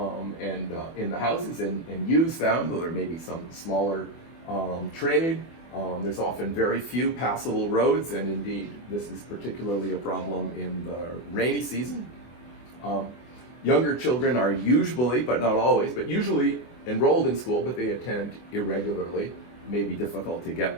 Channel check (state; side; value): late; right; 24 ms